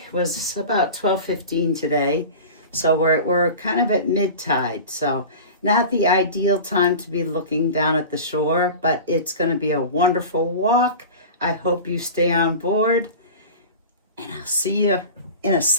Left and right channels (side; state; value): both; inverted; correlation -0.34